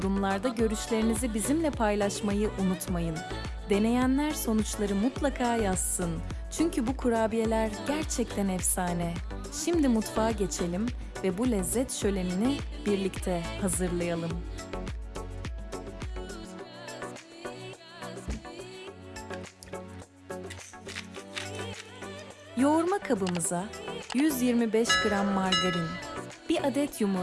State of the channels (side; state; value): both; identical; correlation 1.00